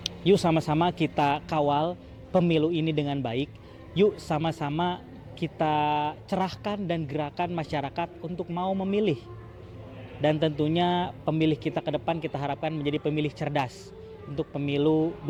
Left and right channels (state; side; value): identical; both; correlation 1.00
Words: yuk sama-sama kita kawal pemilu ini dengan baik. Yuk sama-sama kita cerahkan dan gerakan masyarakat untuk mau memilih. Dan tentunya pemilih kita ke depan kita harapkan menjadi pemilih cerdas untuk pemilu